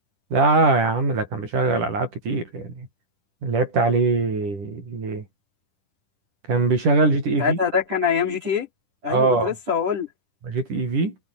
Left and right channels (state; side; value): late; left; 10 ms